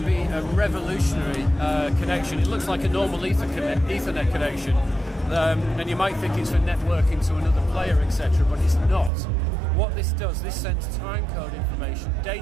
be a revolutionary connection. It looks like a normal Ethernet connection, and you might think it's for networking to another player, etc., but it's not. What this does, this sends timecode information,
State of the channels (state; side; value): drops out; left; at 9.1 s